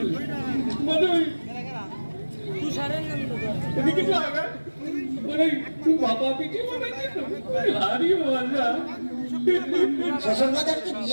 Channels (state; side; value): inverted; both; correlation -1.00